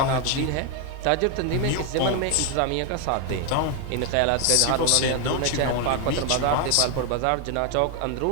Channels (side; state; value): both; different; correlation 0.01